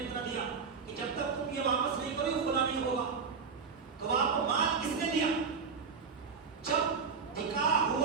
کر دیا کہ جب تک تم یہ واپس نہیں کرو خلا نہیں ہوگا. تو آپ کو مال کس نے دیا؟ جب نکاح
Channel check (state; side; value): quieter; left; 5.6 dB